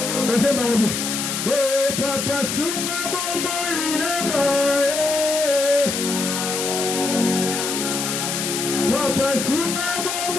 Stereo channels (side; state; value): left; noise; hiss, 2 dB below the sound